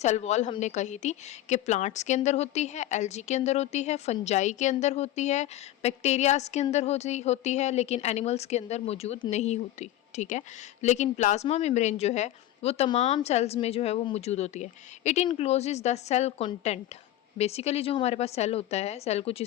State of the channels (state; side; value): quieter; right; 13.8 dB